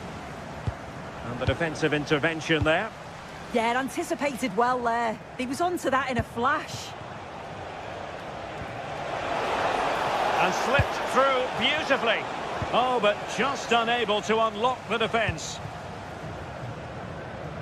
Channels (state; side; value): identical; both; correlation 1.00